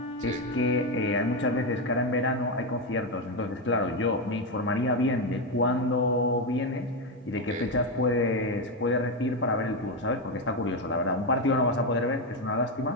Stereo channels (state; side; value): normal; both; correlation 0.09